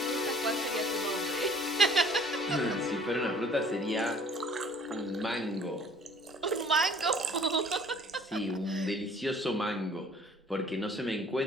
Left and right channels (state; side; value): normal; both; correlation 0.54